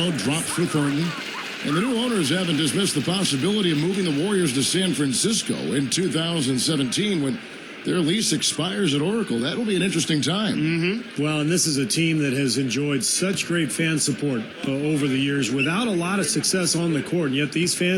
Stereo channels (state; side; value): identical; both; correlation 1.00